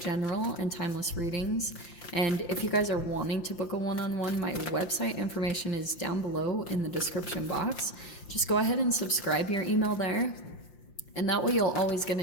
and timeless readings. And if you guys are wanting to book a one-on-one, my website information is down below in the description box. Just go ahead and subscribe your email there. And that way you'll always get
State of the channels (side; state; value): right; late; 5.7 ms